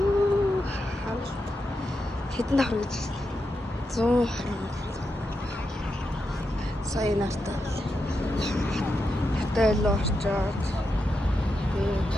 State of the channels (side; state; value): both; normal; correlation 0.86